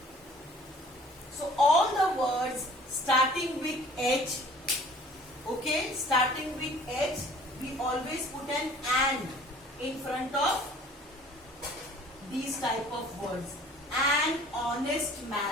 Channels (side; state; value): both; normal; correlation 0.51